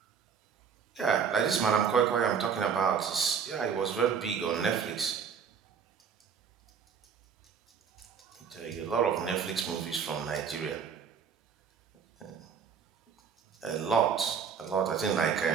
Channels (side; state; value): left; quieter; 6.7 dB